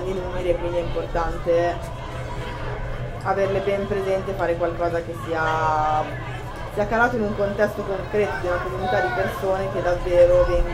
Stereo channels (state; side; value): identical; both; correlation 1.00